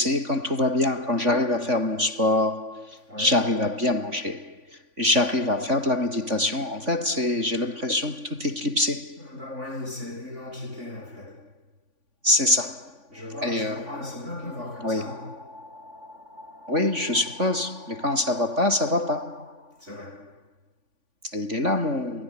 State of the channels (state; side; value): late; left; 3.5 ms